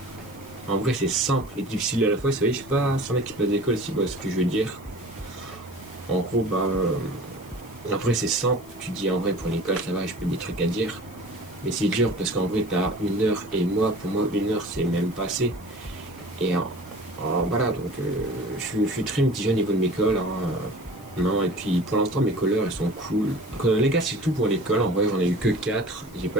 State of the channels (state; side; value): noise; left; hiss, 24 dB below the sound